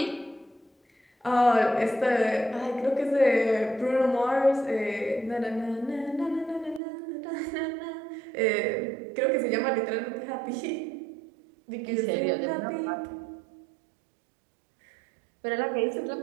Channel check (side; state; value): left; drops out; at 6.8 s